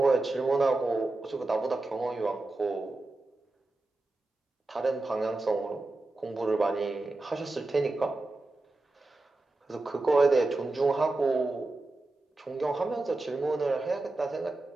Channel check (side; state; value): left; quieter; 3.0 dB